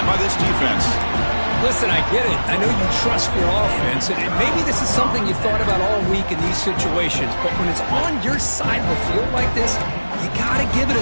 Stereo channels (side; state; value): both; inverted; correlation -1.00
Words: by this defense. Listen, I get it. I know you trust your offense, and maybe this is something you've thought about all week in these situations, but when it's on your side of the field like this, you got to give it a